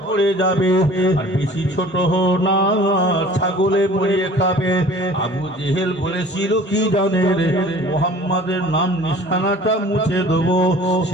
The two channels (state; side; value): normal; both; correlation 0.47